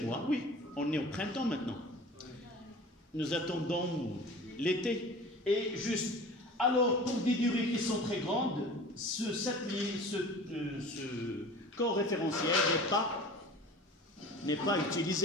oui, on est au printemps maintenant. Nous attendons l'été. Et juste, alors, pour des durées qui sont très grandes, ce corps référentiel n'est pas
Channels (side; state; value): both; normal; correlation 0.40